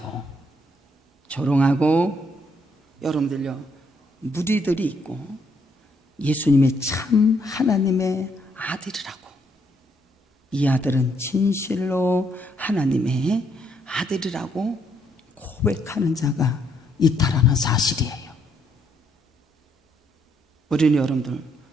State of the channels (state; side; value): normal; both; correlation 0.72